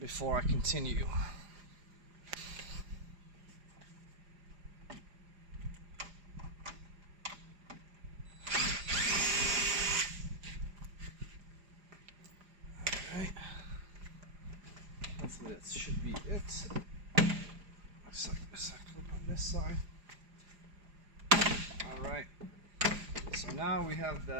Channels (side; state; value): left; late; 4.9 ms